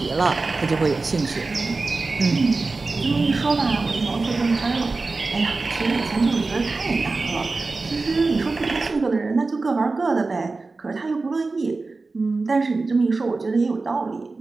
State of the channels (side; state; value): left; quieter; 3.7 dB